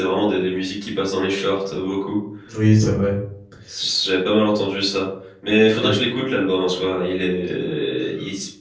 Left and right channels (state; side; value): identical; both; correlation 1.00